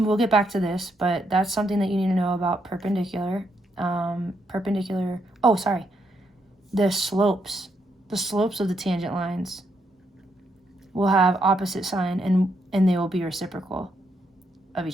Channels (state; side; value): normal; both; correlation 0.77